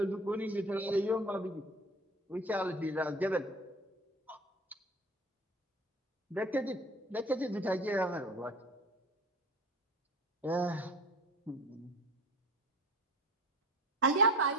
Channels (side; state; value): both; normal; correlation 0.38